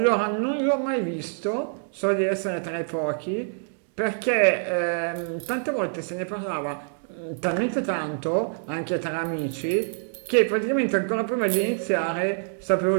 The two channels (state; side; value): silent; left; digital silence